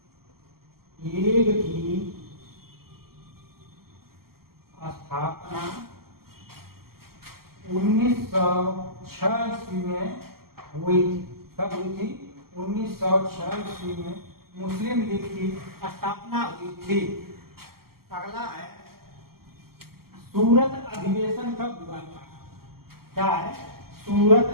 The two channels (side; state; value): left; late; 0.94 ms